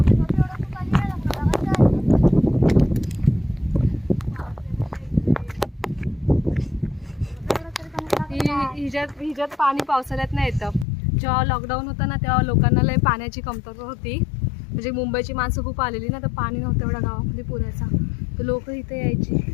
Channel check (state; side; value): drops out; right; at 10.9 s